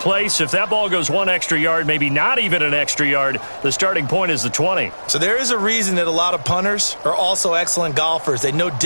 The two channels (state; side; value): inverted; both; correlation -1.00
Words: If that ball goes one extra yard, maybe not even an extra yard, the starting point is the 20. So there is a reason that a lot of punters are also excellent golfers. They know